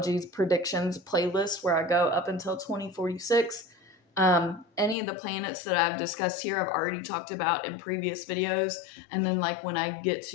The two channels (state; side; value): drops out; right; at 5.0 s